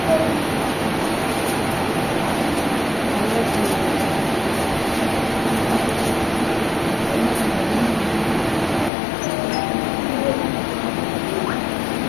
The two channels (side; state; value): right; drops out; at 8.9 s